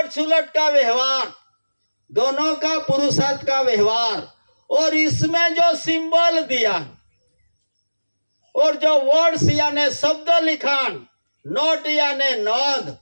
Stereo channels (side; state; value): both; inverted; correlation -1.00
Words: सुलट का व्यवहार, दोनों का पुरुषार्थ का व्यवहार, और इसमें जो सिंबल दिया और जो वर्ड्स यानी शब्द लिखान, नोट यानी नोंद,